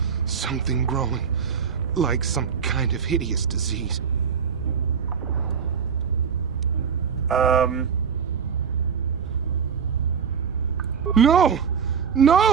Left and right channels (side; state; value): left; quieter; 6.7 dB